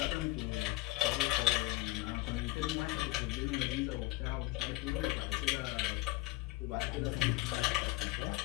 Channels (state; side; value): quieter; right; 20.1 dB